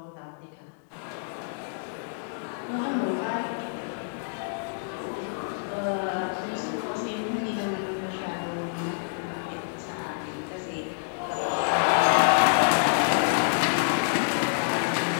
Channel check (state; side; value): silent; right; digital silence